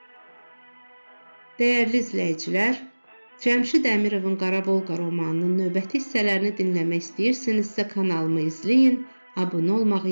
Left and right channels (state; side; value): inverted; both; correlation -1.00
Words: Dəyərli izləyicilər, Cəmşid Əmirovun Qarabolqa romanının növbəti hissələrini dinləmək istəyirsinizsə kanalımı izləyin, abunə